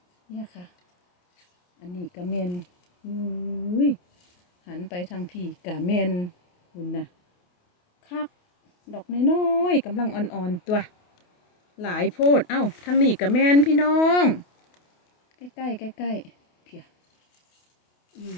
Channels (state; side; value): late; right; 28 ms